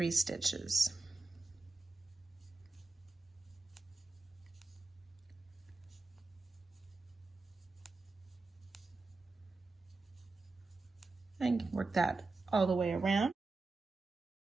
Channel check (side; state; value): left; quieter; 3.6 dB